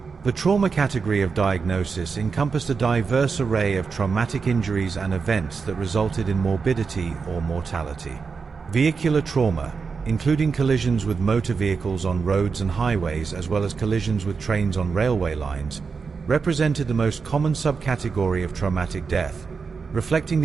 The trauma category of diagnosis encompassed a diverse array of traumatic injuries and events that resulted in morbidity or mortality. Vehicular trauma, including collisions with motor vehicles on roads and highways as well as collisions with trains on railway lines, represented the most common subcategory of traumatic death, reflecting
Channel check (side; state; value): left; quieter; 5.2 dB